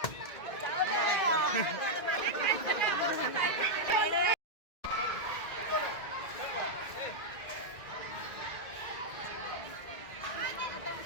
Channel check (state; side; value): late; right; 2.1 ms